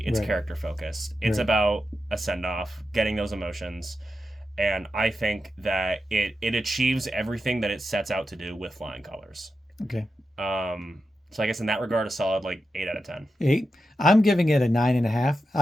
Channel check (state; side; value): normal; both; correlation 0.89